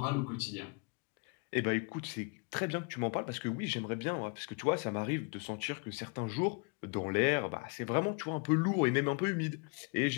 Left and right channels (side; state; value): right; quieter; 33.1 dB